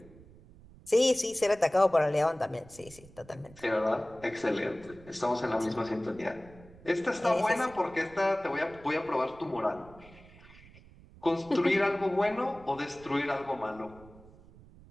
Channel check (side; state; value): right; noise; rumble, 22 dB below the sound